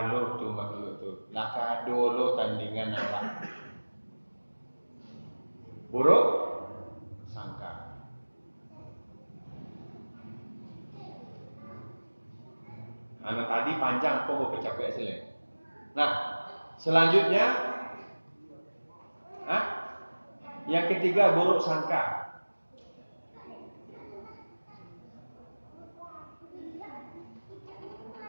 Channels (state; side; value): inverted; both; correlation -1.00